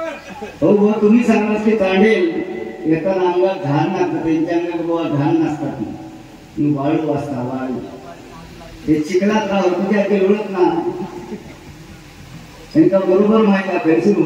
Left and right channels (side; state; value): both; identical; correlation 1.00